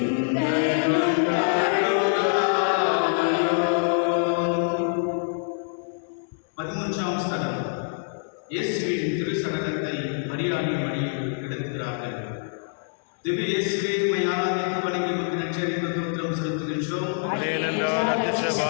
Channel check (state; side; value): silent; right; digital silence